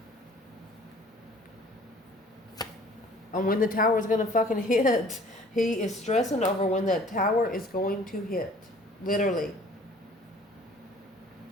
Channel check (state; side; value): normal; both; correlation 0.52